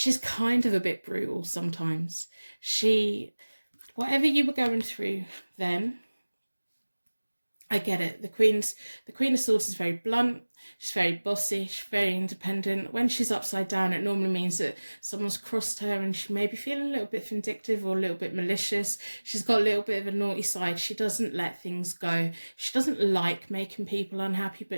kind of a bit brutal sometimes. Whatever you were going through then, I get it. The Queen of Swords is very blunt. She's very bossy. She's very independent. When she's upside down, it normally means that someone's crossed her and she may be feeling a little bit vindictive or a little bit malicious. She's got a little bit of a naughty side. She doesn't let things go. She doesn't like making people unhappy,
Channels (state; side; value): inverted; both; correlation -1.00